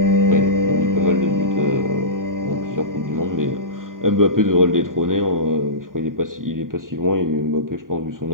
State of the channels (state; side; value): late; left; 0.90 ms